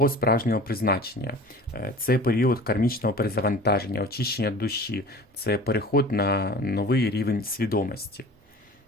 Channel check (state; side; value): normal; both; correlation 0.41